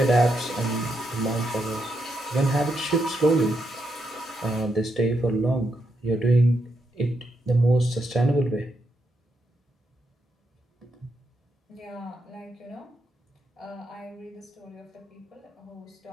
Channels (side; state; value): both; normal; correlation 0.81